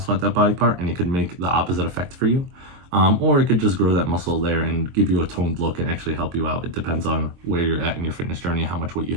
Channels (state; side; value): late; left; 23 ms